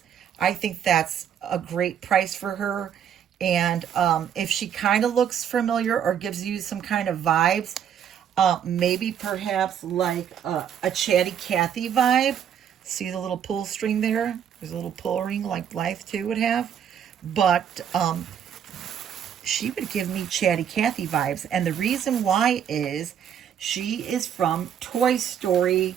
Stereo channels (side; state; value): left; quieter; 8.8 dB